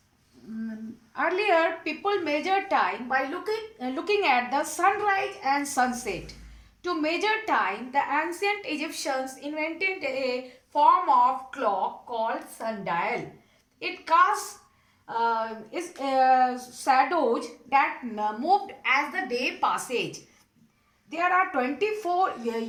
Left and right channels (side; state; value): both; identical; correlation 1.00